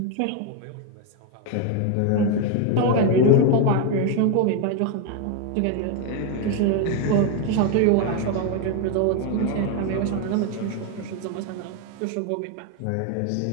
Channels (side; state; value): both; different; correlation 0.02